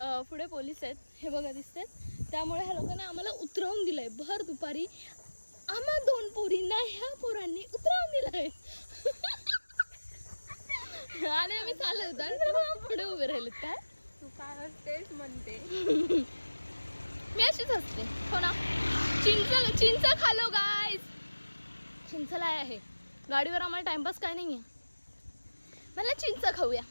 पुढे पोलीस आहेत हे बघा दिसतात. त्यामुळे ह्या लोकांनी आम्हाला उतरवून दिलंय भर दुपारी. आम्हा 2 पोरींना ह्या पोरांनी उतरवून दिलंय. आणि आम्ही चालत होतो आणि पुढे उभे राहिलेत. काय तू काय असतेस म्हणते. मी अशीच असते हो ना. चिंच खालो गाईज. चिंचला आहे गाडीवर. आम्हाला टाइमपास काय नाही आहे. मला चिंच खाऊया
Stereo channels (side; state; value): both; inverted; correlation -1.00